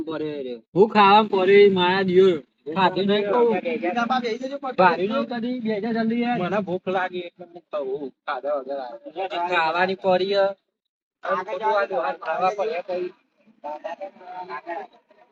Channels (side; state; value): both; identical; correlation 1.00